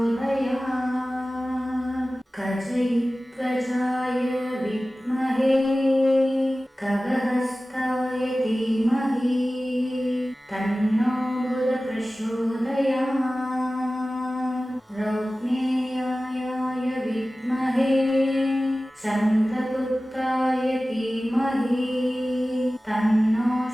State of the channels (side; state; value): both; normal; correlation 0.96